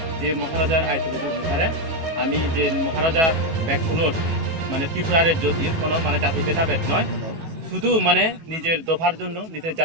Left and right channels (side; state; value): left; late; 18 ms